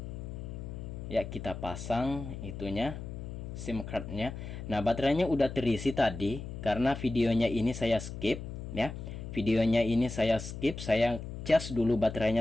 Ya kita pasang itunya, SIM cardnya. Nah baterainya udah terisi tadi, karena videonya ini saya skip ya. Videonya ini saya skip, saya cas dulu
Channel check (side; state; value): left; noise; hum, 8 dB below the sound